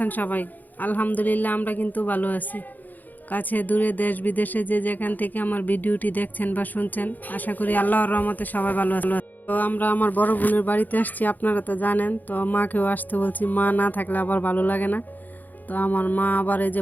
সবাই? আলহামদুলিল্লাহ, আমরা কিন্তু ভালো আছি। কাছে দূরে দেশ বিদেশে যে যেখান থেকে আমার ভিডিওটি দেখছেন বা শুনছেন, আশা করি আল্লাহর রহমতে সবাই ভালো আছে। তো আমরা আমার বড় বোনের বাড়িতে আসছি, আপনারা তো জানেন। তো মাকেও আসতে বলছি, মা না থাকলে আবার ভালো লাগে না। তো আমার মা আবার এই যে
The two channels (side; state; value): right; late; 0.084 ms